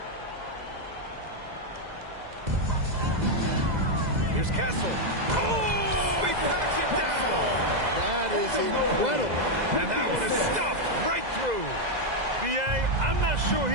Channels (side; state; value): left; late; 2.0 ms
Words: Here's Castle. Oh, he packs it down. That is incredible. And that one is stuffed right through. B.A., I'm not sure